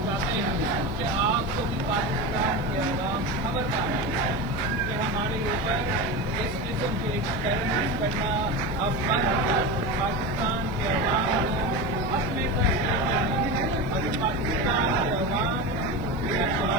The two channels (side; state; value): left; noise; hiss, 27 dB below the sound